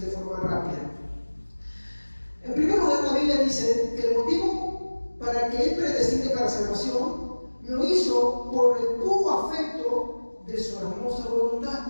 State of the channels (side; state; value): both; inverted; correlation -1.00